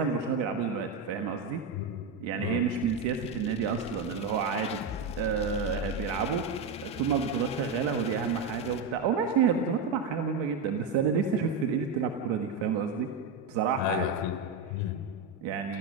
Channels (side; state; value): left; quieter; 4.3 dB